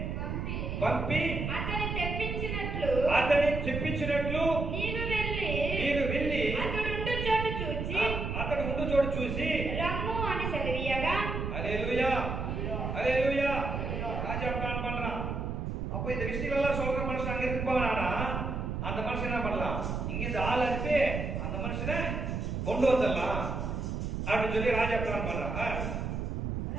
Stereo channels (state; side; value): noise; right; rumble, 3 dB below the sound